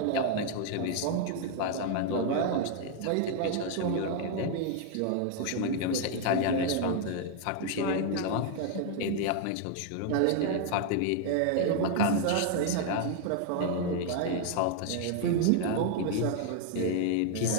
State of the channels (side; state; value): both; different; correlation 0.00